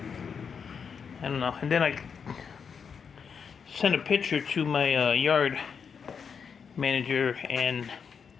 I don't know. And then I sent a picture to my yard manager, and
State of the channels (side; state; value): right; quieter; 6.4 dB